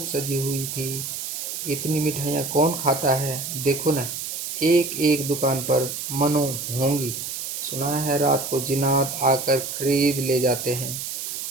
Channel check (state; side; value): noise; right; hiss, 5 dB below the sound